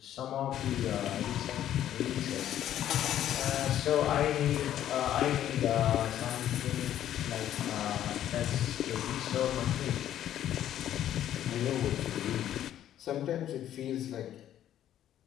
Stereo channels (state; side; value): quieter; right; 11.4 dB